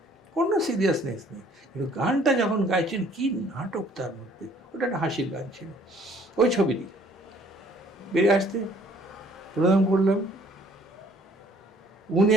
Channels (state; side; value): normal; both; correlation 0.59